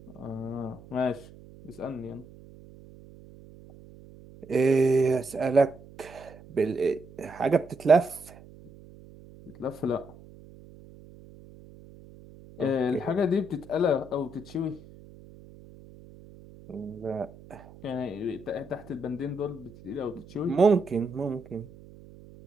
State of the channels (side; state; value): right; noise; hum, 20 dB below the sound